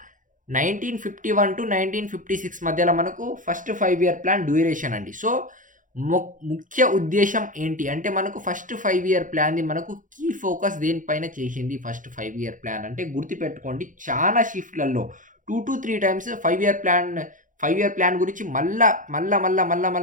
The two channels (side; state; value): left; late; 0.38 ms